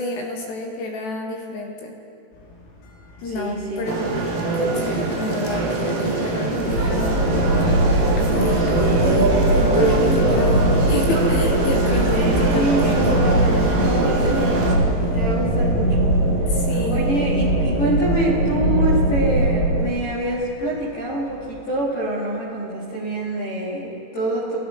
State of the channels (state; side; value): late; right; 18 ms